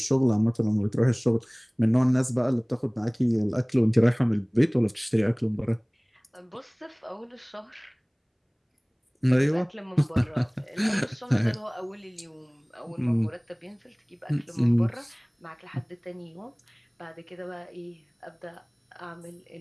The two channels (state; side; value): identical; both; correlation 1.00